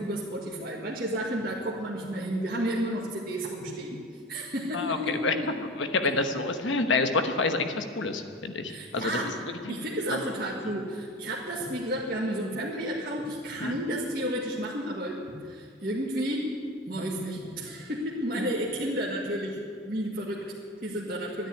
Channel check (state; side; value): normal; both; correlation 0.32